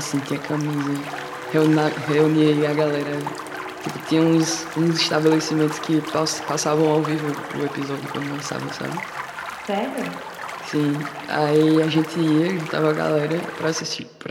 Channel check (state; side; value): identical; both; correlation 1.00